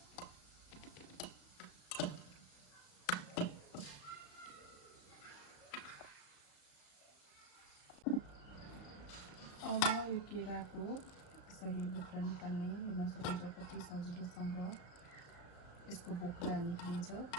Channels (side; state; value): right; late; 34 ms